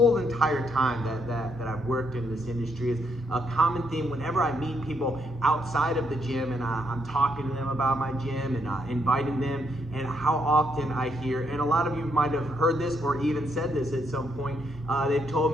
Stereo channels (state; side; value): normal; both; correlation 0.75